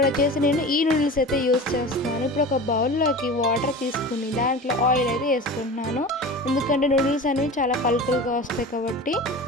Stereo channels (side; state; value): both; normal; correlation 0.34